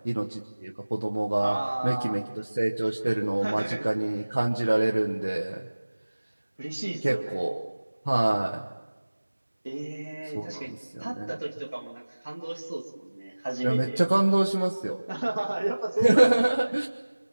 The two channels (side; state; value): both; inverted; correlation -1.00